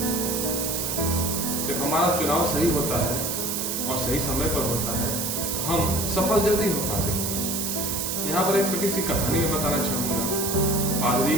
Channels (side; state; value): right; noise; hiss, 1 dB below the sound